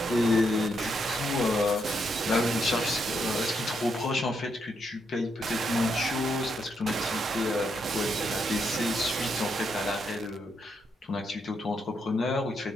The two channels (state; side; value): normal; both; correlation 0.79